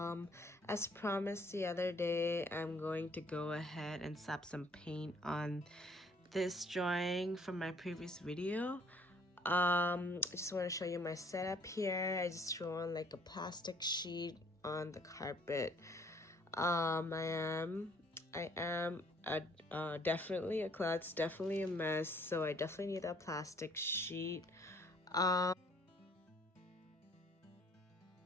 As promised the other day, I'm going to go ahead and slap some paint on this drawing from my previous video. I just want to show you my setup here. I just threw on like a plastic sheet on the carpet. I am definitely a klutz, definitely a mess, so I definitely need a plastic sheet.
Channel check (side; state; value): both; normal; correlation 0.60